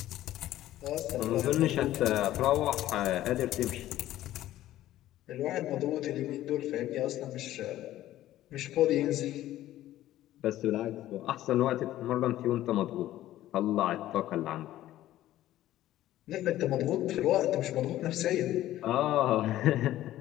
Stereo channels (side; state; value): right; quieter; 14.1 dB